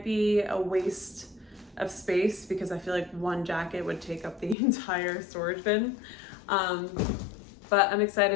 be a waste of space because I feel like one jacket would take up the entire storage bin. But I'm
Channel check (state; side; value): drops out; right; at 4.5 s